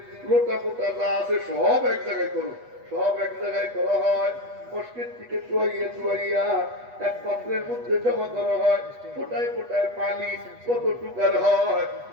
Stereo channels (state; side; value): late; left; 8.2 ms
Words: লোটা মোটা যা আছে সব এক জায়গায় করো। সব এক জায়গায় করা হয়, মস্কের থেকে চুয়াইয়া এক পাত্রের মধ্যে জমা করা হয়, ফোটায় ফোটায় পানি কতটুকার হয়।